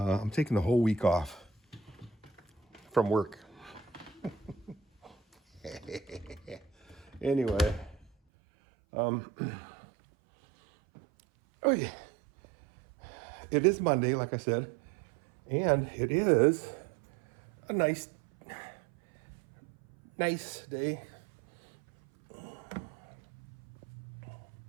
taking the whole week off from work. Anyway, oh yeah, it is Monday, like I said, and it is a nice day.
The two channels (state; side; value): drops out; left; at 8.1 s